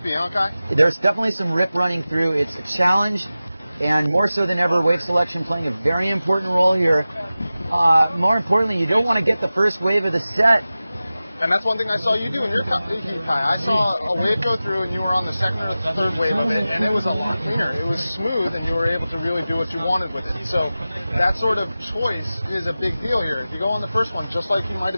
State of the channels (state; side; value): inverted; both; correlation -0.96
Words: huh, Kai? There's definitely some rip running through. It's a challenge, and more so than ever, wave selection playing a very important role here. More importantly, you don't want to get the first wave of the set. And that's one thing I saw you do in your heat, Kai. I saw a wave go through, and you were on the second or third wave of it, and it was a lot cleaner. It was smooth, and you were able to really do what you wanted with it. So that sort of choice is a big deal here. If you go on the first one, just like you might